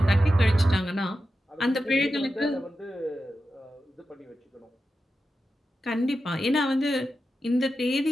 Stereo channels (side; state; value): both; normal; correlation 0.91